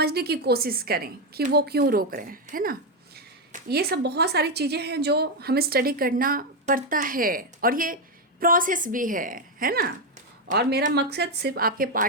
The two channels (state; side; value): normal; both; correlation 0.05